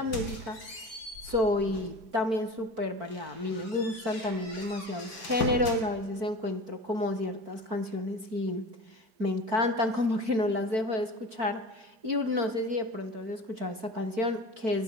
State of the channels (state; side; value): late; left; 4.5 ms